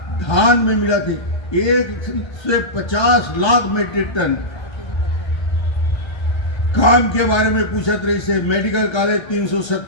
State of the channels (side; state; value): right; late; 1.3 ms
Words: धान में मिला थी, 1 से 50 लाख मीट्रिक टन। काम के बारे में पूछत रही से, मेडिकल कॉलेज